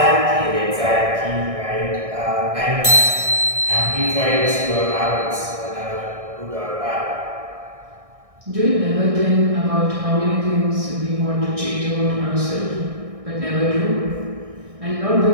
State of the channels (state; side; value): late; left; 1.6 ms